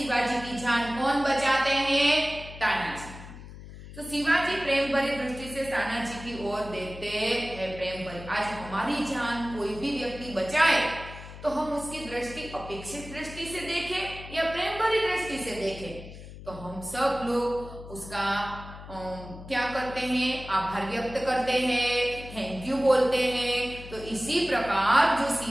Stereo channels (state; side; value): noise; left; hum, 14 dB below the sound